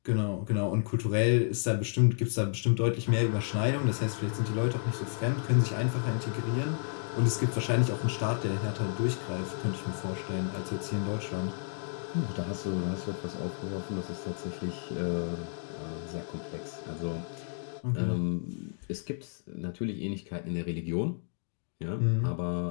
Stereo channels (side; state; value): right; silent; digital silence